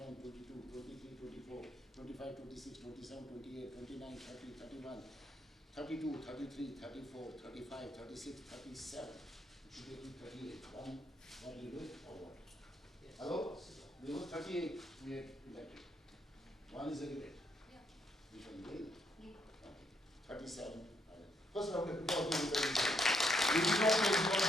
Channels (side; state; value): both; normal; correlation 0.75